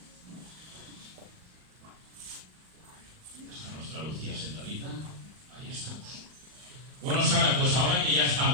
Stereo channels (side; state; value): left; late; 39 ms